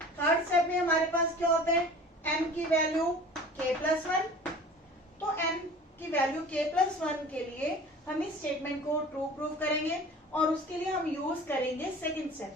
थर्ड स्टेप में हमारे पास क्या होता है, m की वैल्यू k प्लस 1, तो m की वैल्यू k प्लस 1 के लिए हम इस स्टेटमेंट को ट्रू प्रूव करेंगे और उसके लिए हम यूज करेंगे सेकेंड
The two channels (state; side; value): normal; both; correlation 0.42